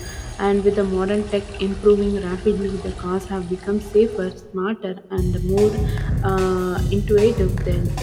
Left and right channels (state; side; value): identical; both; correlation 1.00